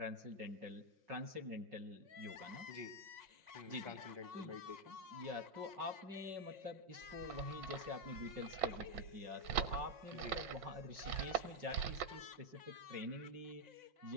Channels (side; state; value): left; late; 5.5 ms